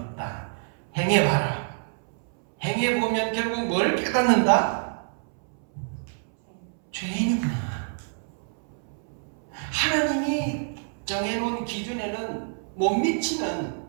행해봐라. 행해보면 결국 뭘 깨닫는다? 죄인이구나. 하나님이 정해놓은 기준에는 못 미치는,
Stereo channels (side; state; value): left; silent; 60 dB below the other